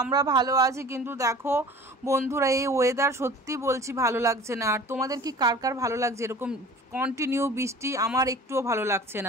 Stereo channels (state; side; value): normal; both; correlation 0.43